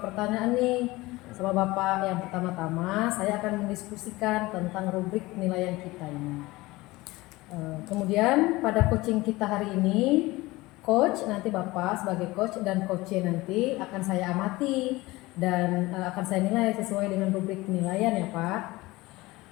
pertanyaan nih sama Bapak. Yang pertama-tama, saya akan mendiskusikan tentang rubrik penilaian kita ini. Kemudian pada coaching kita hari ini, coach nanti Bapak sebagai coach dan coachnya nanti akan saya amati dan akan saya nilai sesuai dengan rubrik penilaian ya Pak.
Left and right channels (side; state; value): right; quieter; 20.4 dB